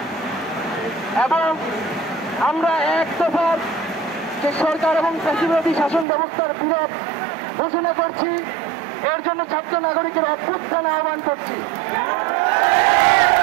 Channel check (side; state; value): left; drops out; at 6.1 s